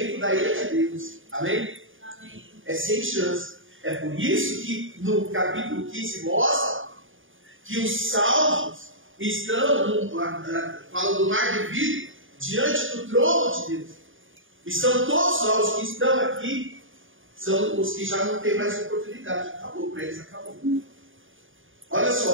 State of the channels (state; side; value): late; left; 0.58 ms